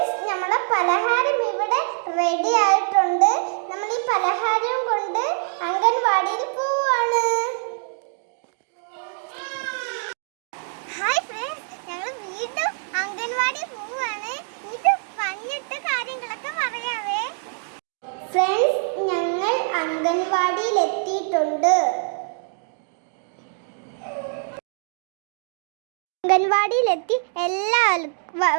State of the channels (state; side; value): silent; left; digital silence